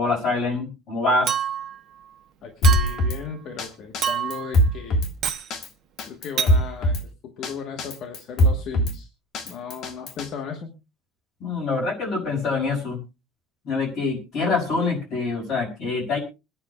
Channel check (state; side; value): normal; both; correlation 0.39